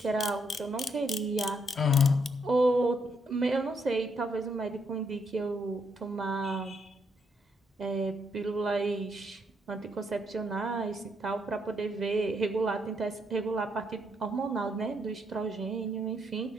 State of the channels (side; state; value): both; normal; correlation 0.75